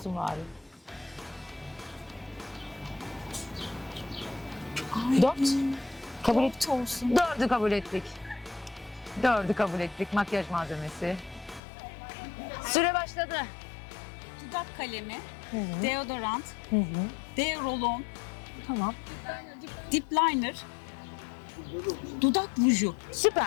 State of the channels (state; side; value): drops out; right; at 11.6 s